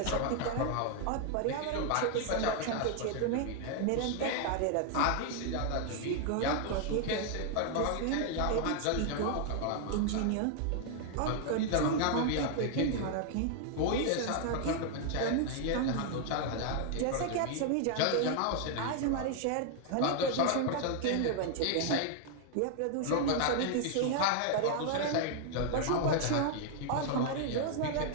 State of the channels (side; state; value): both; different; correlation 0.00